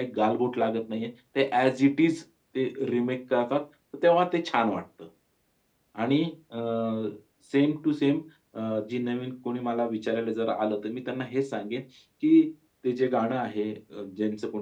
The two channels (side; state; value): both; identical; correlation 1.00